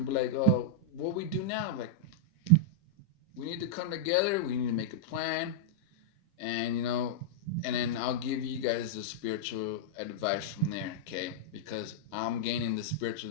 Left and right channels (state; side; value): normal; both; correlation -0.04